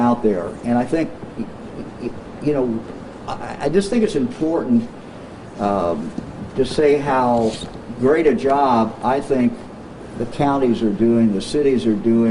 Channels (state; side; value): identical; both; correlation 1.00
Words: there, and I think, I just think it's important to say how great a job I think the counties are doing, the cities are